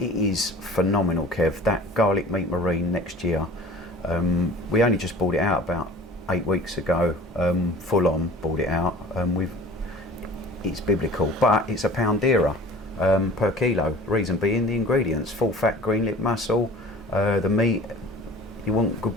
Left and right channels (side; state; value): both; normal; correlation 0.44